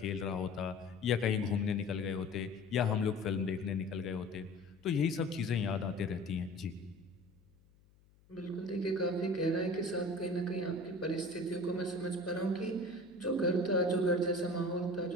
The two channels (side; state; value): left; noise; hum, 30 dB below the sound